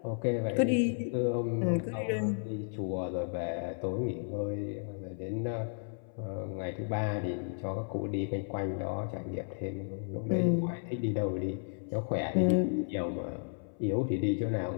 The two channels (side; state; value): right; silent; 56 dB below the other